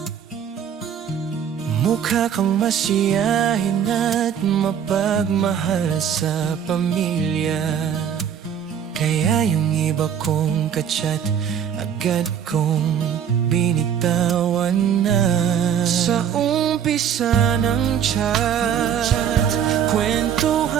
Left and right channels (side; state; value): left; quieter; 8.5 dB